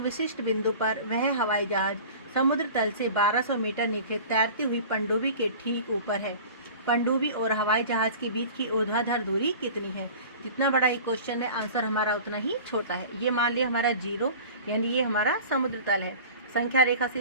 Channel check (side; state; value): both; inverted; correlation -0.40